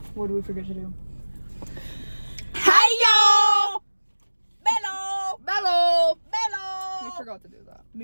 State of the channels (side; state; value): both; inverted; correlation -1.00